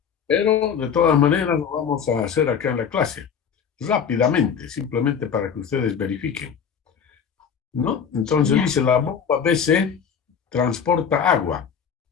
Pero de todas maneras lo vamos a hacer acá en la clase, rápidamente, simplemente para que ustedes verifiquen, ¿no? Entonces Ya. dice, la bomba BC transporta agua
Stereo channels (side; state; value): right; quieter; 7.2 dB